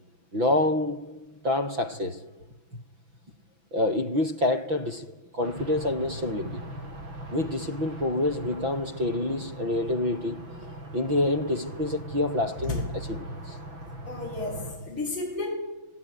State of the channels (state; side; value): late; left; 6.0 ms